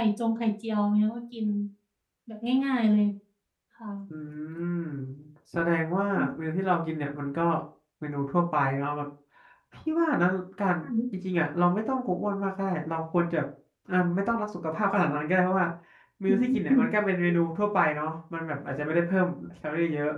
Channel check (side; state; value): both; identical; correlation 1.00